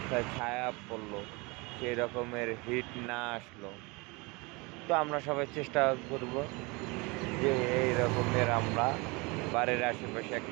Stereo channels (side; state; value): left; quieter; 26.8 dB